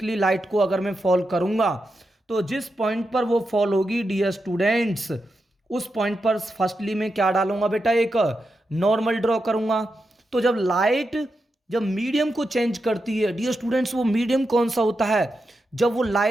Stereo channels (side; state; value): both; normal; correlation 0.87